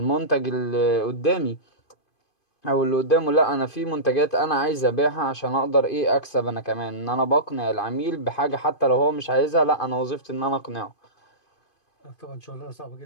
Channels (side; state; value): right; late; 2.5 ms